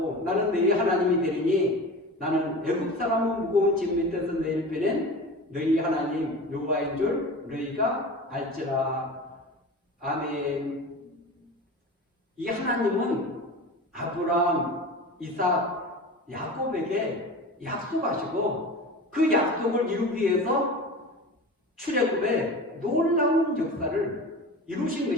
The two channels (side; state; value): both; normal; correlation 0.33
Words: 나는 너희 하나님이 되리니 나는 애국 사람은 무거운 짐 밑에서 너희를 빼낸 너희 하나님 여호와인 줄 너희가 알지라. 아멘. 이 하나님은 아브라함, 이삭, 야곱에게 약속하시고 그 약속을 이루기 위해서 출애굽의 놀라운 역사를 이루신